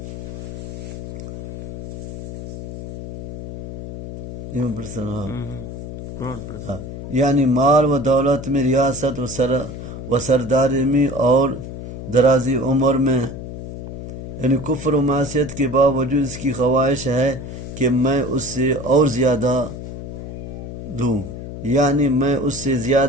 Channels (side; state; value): left; noise; hum, 9 dB below the sound